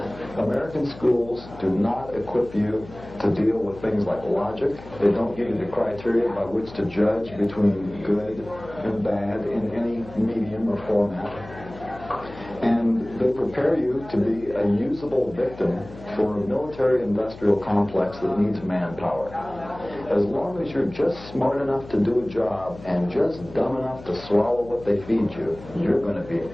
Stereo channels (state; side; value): noise; left; hum, 17 dB below the sound